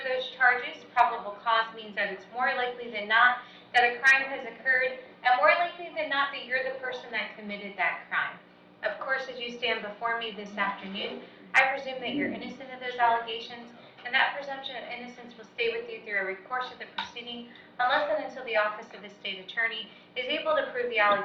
those charges. Probable cause means that it's more likely than not that a crime has occurred, and more likely than not that you're the person that committed that crime. Of course, as you stand before me this afternoon, I presume that you're innocent of those allegations, and that presumption of innocence will stay with you through every course of the proceeding, unless and until the Office of the State Attorney is able to prove the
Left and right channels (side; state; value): both; identical; correlation 1.00